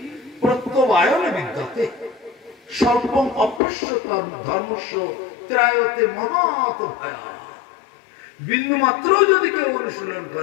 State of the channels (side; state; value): right; drops out; at 3.6 s